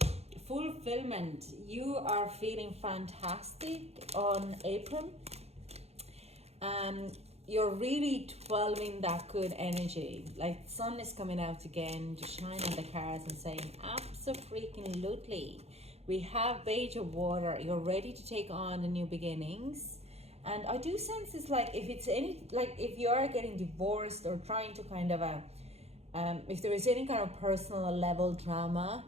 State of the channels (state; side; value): late; left; 0.30 ms